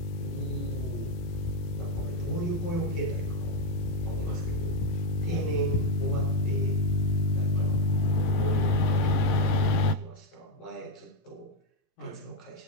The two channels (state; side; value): late; right; 18 ms